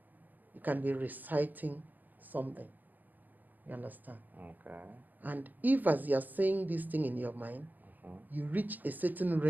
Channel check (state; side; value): late; left; 0.085 ms